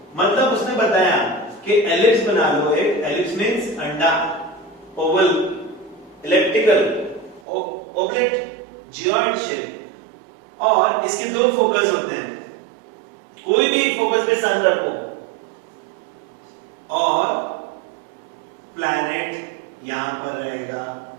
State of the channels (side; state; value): left; drops out; at 7.4 s